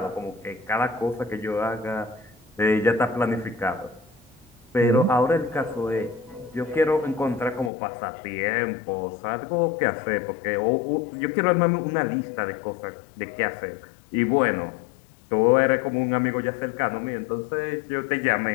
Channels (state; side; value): drops out; right; at 7.7 s